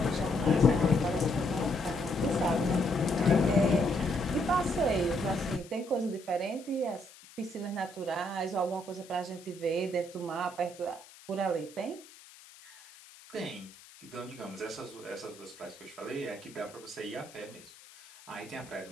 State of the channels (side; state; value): left; noise; hiss, 21 dB below the sound